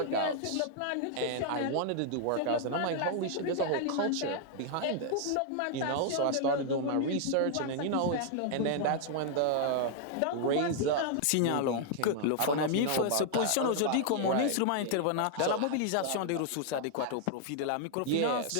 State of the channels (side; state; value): both; different; correlation -0.01